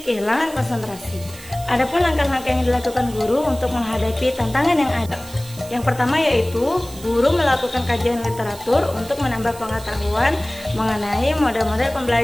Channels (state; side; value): noise; right; hiss, 17 dB below the sound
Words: kehilangan konsentrasi. Adapun langkah-langkah yang dilakukan guru untuk menghadapi tantangan yang ada. Yang pertama yaitu guru melakukan kajian literatur untuk menambah pengetahuan mengenai model-model